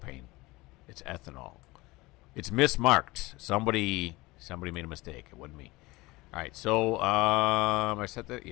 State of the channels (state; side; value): quieter; right; 21.3 dB